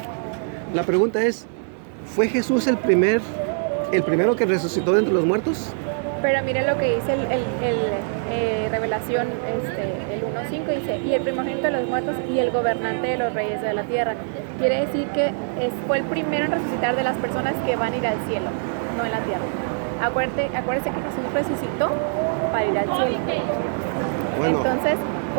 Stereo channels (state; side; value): silent; left; digital silence